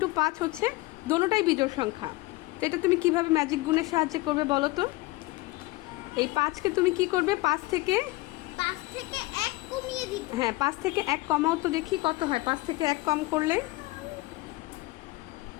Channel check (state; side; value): quieter; right; 21.1 dB